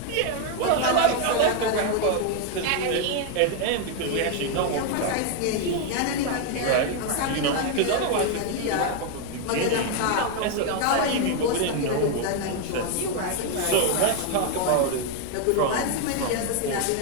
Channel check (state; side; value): different; both; correlation 0.01